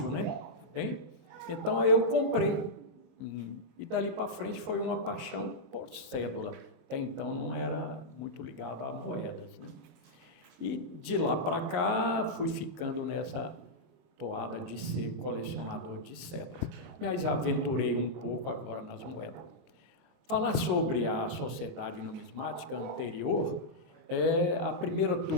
né? Tá bem? Então aí eu comprei. E dali para frente foi uma paixão por cédula. Até então não era muito ligado a moedas, né? E de lá para cá fui ficando nessa toada de ser colecionador de cédulas. Mas aventurei um pouco agora nas moedas. Falar sobre a sociedade numismática anterior, a primeira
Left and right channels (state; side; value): late; left; 22 ms